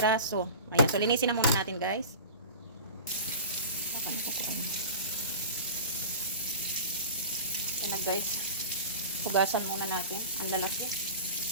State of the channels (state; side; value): inverted; both; correlation -0.34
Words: Ayan, so linisin na muna natin guys. Ayan na guys. Hugasan muna natin. Ang lalaki.